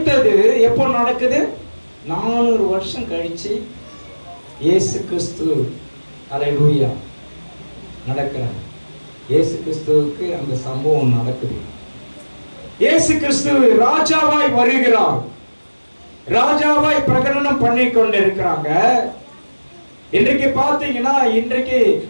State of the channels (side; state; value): both; inverted; correlation -1.00